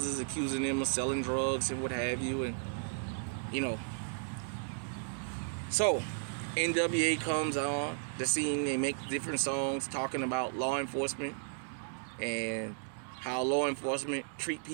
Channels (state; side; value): silent; left; digital silence